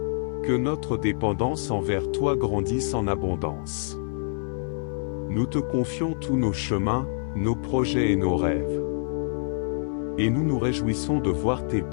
Que notre dépendance envers toi grandisse en abondance. Nous te confions tous nos chemins, nos projets et nos rêves. Et nous nous réjouissons de voir tes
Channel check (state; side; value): silent; right; 61 dB below the other